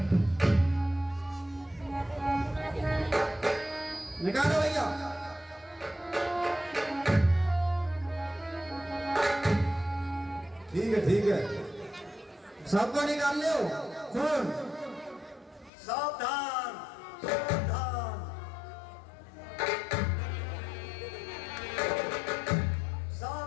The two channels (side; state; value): right; drops out; at 15.7 s